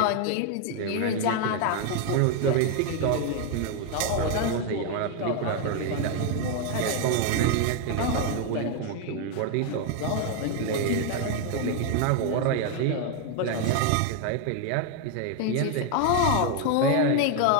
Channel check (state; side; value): different; both; correlation 0.01